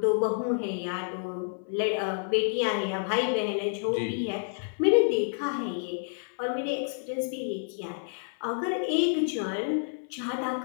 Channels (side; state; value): right; silent; 58 dB below the other